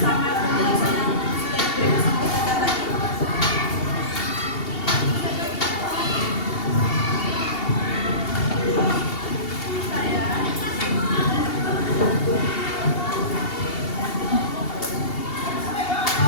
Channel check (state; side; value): late; right; 2.7 ms